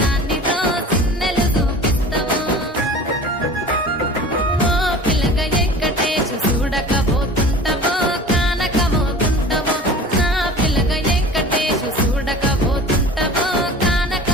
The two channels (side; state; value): both; normal; correlation 0.40